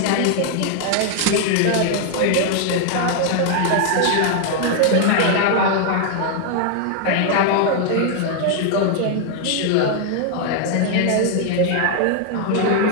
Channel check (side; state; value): both; different; correlation 0.00